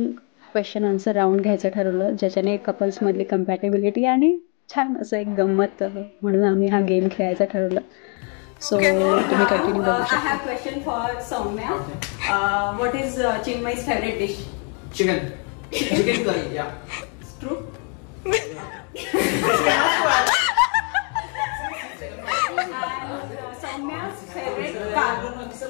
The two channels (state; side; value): quieter; right; 38.3 dB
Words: क्वेश्चन आन्सर राऊंड घ्यायचं ठरवलं ज्याच्याने कपल्समधली कम्पॅटेबिलिटी आणि छान असं एक गंमत म्हणून आम्ही हा गेम खेळायचा ठरवलं. सो तुम्ही कंटिन्यू करू शकता. I have question for Soumya. What is Chinmay's favorite dish? Chicken curry, yeah. It's true. Soumya's favorite